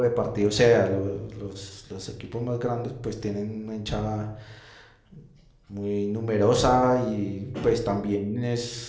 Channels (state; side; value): identical; both; correlation 1.00